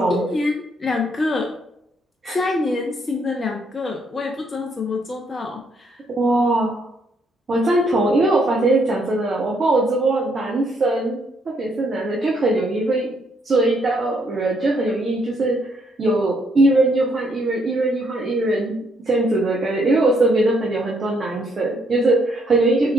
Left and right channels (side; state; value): both; normal; correlation 0.71